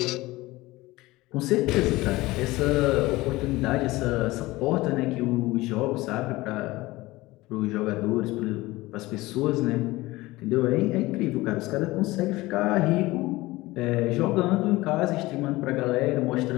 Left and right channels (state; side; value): quieter; right; 19.6 dB